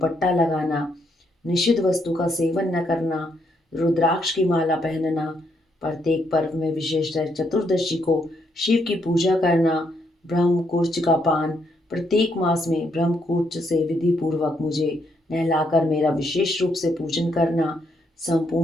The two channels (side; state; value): both; normal; correlation 0.75